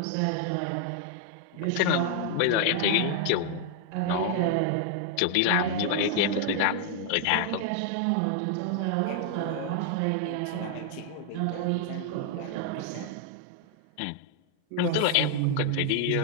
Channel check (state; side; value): different; both; correlation 0.00